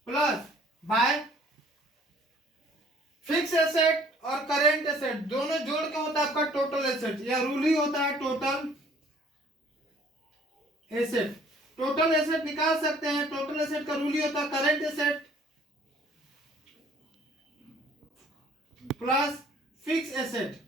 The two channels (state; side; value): normal; both; correlation 0.56